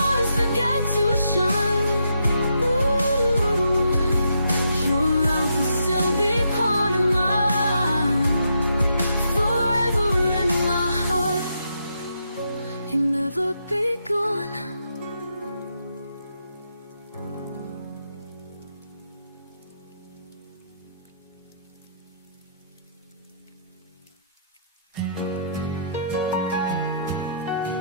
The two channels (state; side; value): inverted; both; correlation -0.78